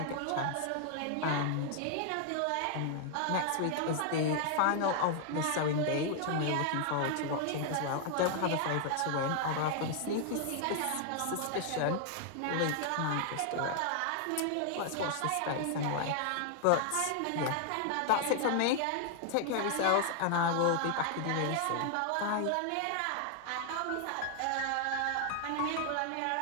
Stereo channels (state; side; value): different; both; correlation 0.00